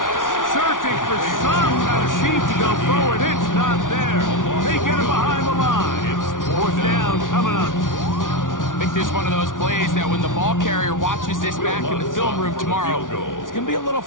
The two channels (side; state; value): right; late; 0.88 ms